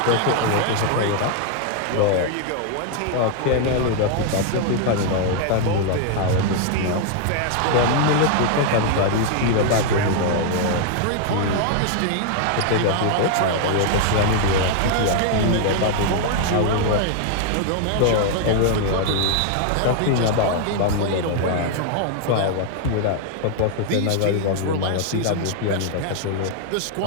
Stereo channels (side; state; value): both; different; correlation 0.00